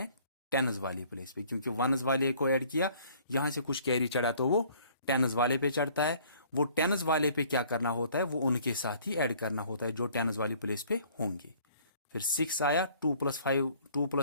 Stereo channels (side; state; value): both; inverted; correlation -0.56